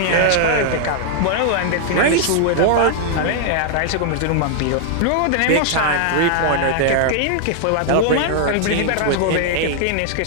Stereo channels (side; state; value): both; different; correlation 0.00